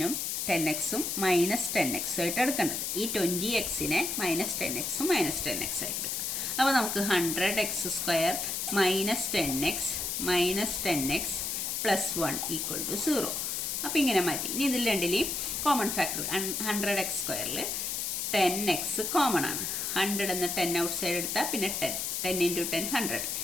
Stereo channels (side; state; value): left; noise; hiss, 1 dB below the sound